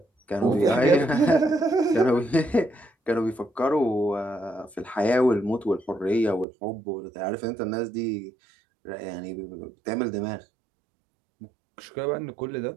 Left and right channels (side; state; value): left; drops out; at 6.5 s